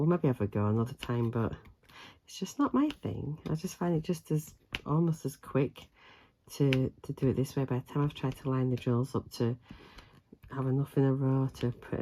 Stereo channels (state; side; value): identical; both; correlation 1.00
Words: maybe have a go another time, but it's just not my thing. I just find it just as almost as quick to do it this way. By the time I've tried to line the drills up to have enough in a row to put